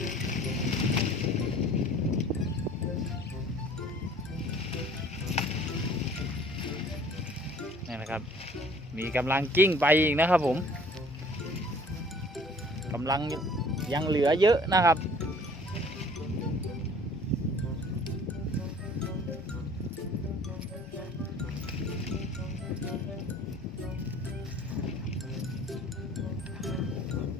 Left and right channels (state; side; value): normal; both; correlation 0.52